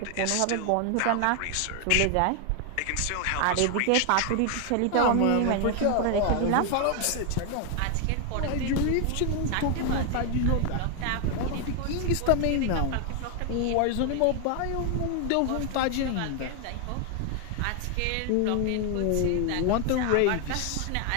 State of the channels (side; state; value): both; different; correlation 0.00